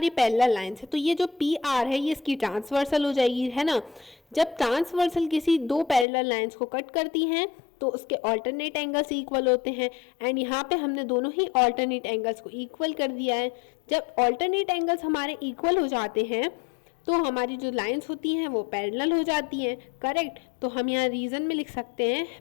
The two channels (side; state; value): right; drops out; at 6.1 s